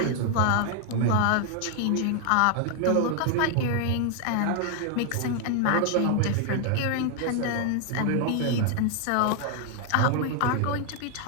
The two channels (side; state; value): both; different; correlation 0.00